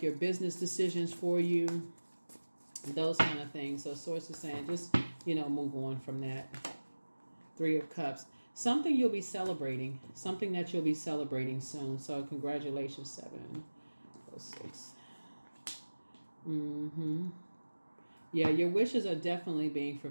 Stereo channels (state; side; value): inverted; both; correlation -1.00